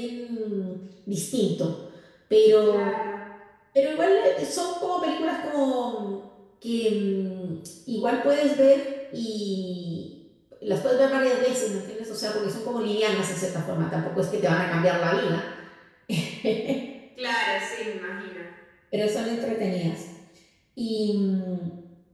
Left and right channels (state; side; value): identical; both; correlation 1.00